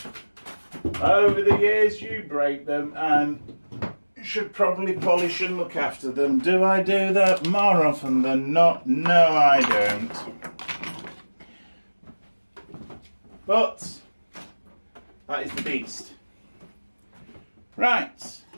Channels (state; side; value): inverted; both; correlation -1.00